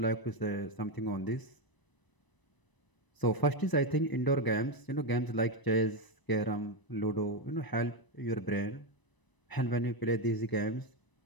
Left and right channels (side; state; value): right; late; 1.0 ms